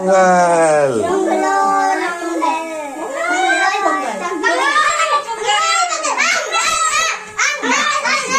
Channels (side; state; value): both; identical; correlation 1.00